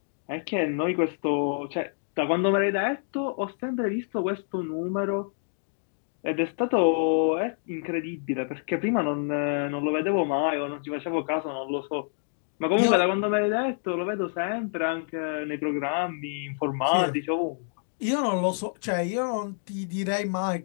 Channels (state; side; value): silent; right; digital silence